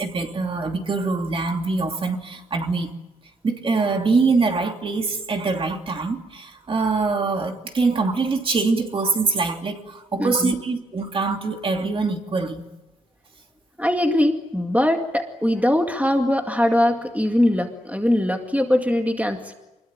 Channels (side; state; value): both; normal; correlation 0.78